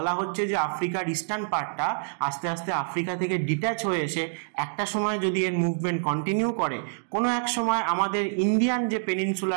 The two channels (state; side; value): silent; left; digital silence